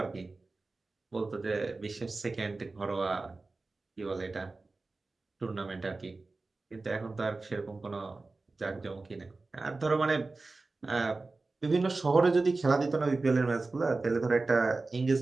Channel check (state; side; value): quieter; left; 3.5 dB